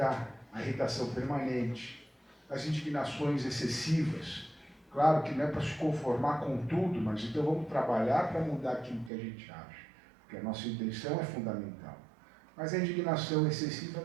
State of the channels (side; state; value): left; drops out; at 9.1 s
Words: a irritação permanente, as indignações excessivas. Claro que não é para se conformar com tudo, mas então vamos trabalhar para mudar aquilo que a gente acha, porque a nossa intenção é fundamental. Mas a indignação excessiva